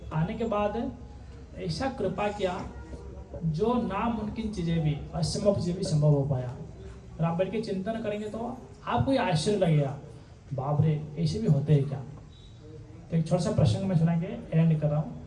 आने के बाद ऐसा कृपा किया जो नामुमकिन चीज़ें भी, असंभव चीज़ें भी संभव हो पाया। और आप बैठ के चिंतन करेंगे तो आपको ये आश्चर्य लगेगा, बाप रे ऐसे भी होते हैं क्या। तो एक छोटा सा प्रसंग में सुना के एंड कर रहा हूँ।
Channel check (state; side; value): identical; both; correlation 1.00